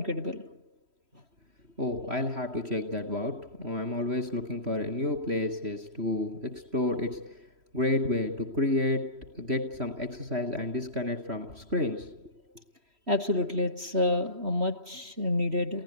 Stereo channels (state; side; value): late; left; 3.1 ms